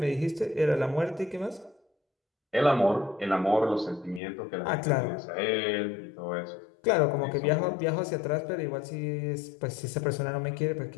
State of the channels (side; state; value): right; drops out; at 4.2 s